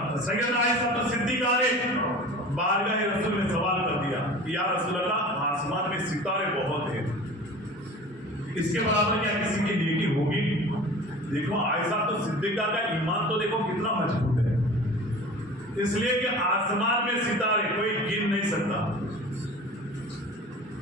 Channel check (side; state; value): both; normal; correlation 0.39